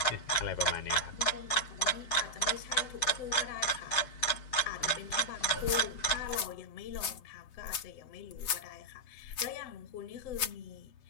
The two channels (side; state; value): right; late; 7.2 ms